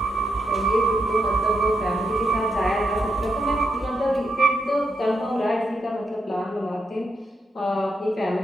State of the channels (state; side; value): normal; both; correlation 0.82